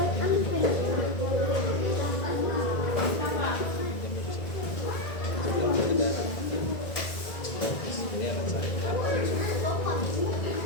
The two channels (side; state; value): right; late; 1.9 ms